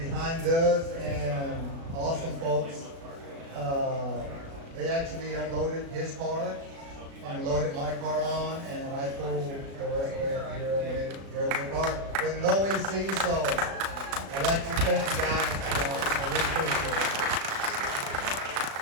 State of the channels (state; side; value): late; left; 36 ms